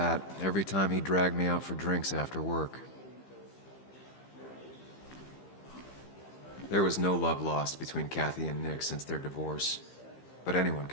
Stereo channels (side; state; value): right; late; 15 ms